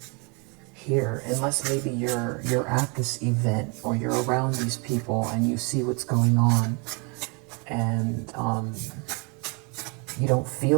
here, unless maybe you're at this event or you're around these people and you see what's going on, and you don't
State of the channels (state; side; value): quieter; left; 32.7 dB